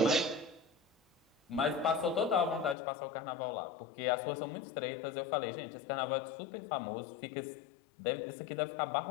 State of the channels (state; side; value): drops out; right; at 2.8 s